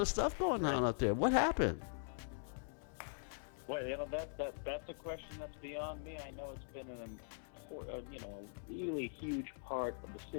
stuff going on out there. What happened? Well, that's a question that's beyond me. I know it's been a really huge part of the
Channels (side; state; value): right; silent; digital silence